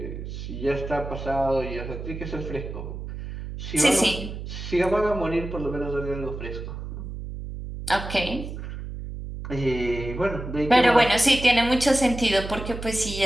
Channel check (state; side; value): noise; right; hum, 8 dB below the sound